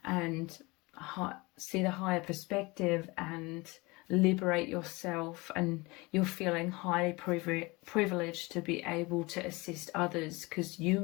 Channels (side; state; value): right; quieter; 24.3 dB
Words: and see the higher perspective and liberate yourself. And you're feeling highly privileged to be able to assist others, because you